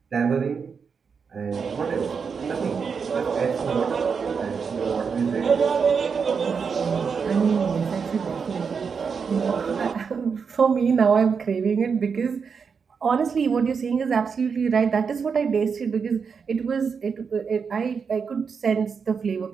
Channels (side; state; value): left; quieter; 5.9 dB